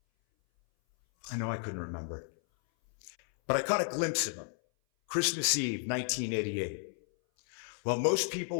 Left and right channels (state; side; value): silent; right; 56 dB below the other